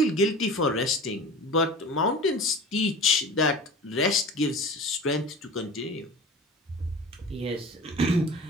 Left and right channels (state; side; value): normal; both; correlation 0.37